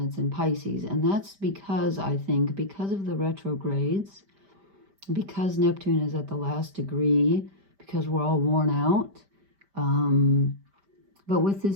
in Pisces. And that's because, I think, because of the retrogrades, because Neptune is at the last degree, because we're all worn out. But with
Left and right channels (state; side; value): late; left; 5.1 ms